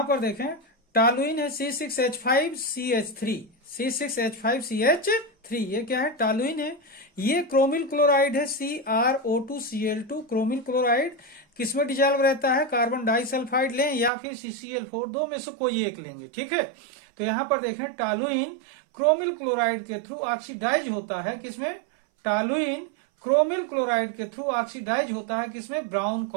पर देखें टॉलुइन है C6H5CH3, ये क्या है, टॉलुइन है। ये क्रोमिल क्लोराइड है CrO2Cl2, क्रोमिल क्लोराइड किसमें डिजॉल्व रहता है, कार्बन डाइसल्फाइड लें या फिर CCl4, दो में से कोई एक लेंगे, ठीक है। तो यहां पर देखें टॉलुइन क्रोमिल क्लोराइड के थ्रू ऑक्सीडाइज होता है किसमें, टॉलुइन क्रोमिल क्लोराइड के थ्रू ऑक्सीडाइज होता है किसमें, ब्राउन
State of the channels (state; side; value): drops out; left; at 14.1 s